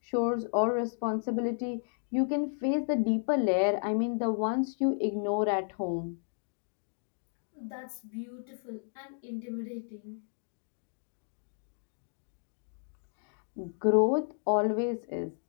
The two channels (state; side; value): silent; right; digital silence